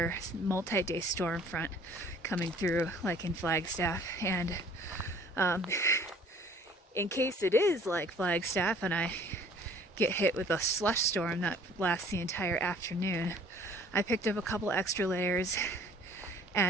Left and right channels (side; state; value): both; normal; correlation 0.54